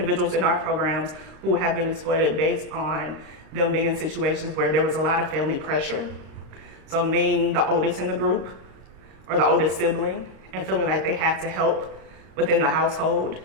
in our programs who have been exploited based on them being in situations where there was a lot of family pressure. So being the oldest in the group or the oldest sibling and feeling like they had to help within the household,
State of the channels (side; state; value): left; late; 26 ms